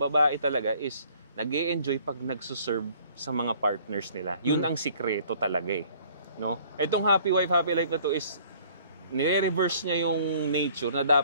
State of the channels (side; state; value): both; inverted; correlation -0.56